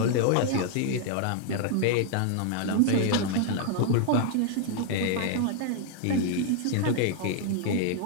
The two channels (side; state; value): both; different; correlation 0.00